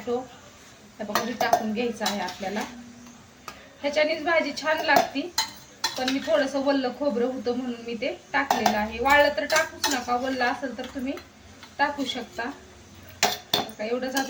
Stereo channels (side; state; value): both; identical; correlation 1.00